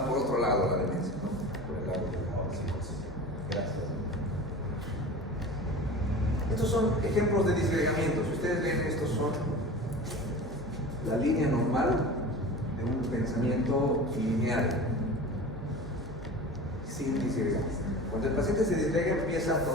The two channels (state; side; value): normal; both; correlation 0.35